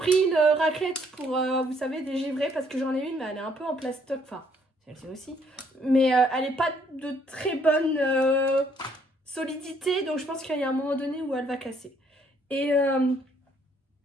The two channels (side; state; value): both; normal; correlation 0.66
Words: une raclette pour, vous savez, dégivrer parce que j'en ai une, mais elle est un peu en plastoc. Enfin, celle-ci aussi. Mais elle n'est pas de très bonne solidité. Donc, je pense qu'il y a un moment donné où elle va casser. Et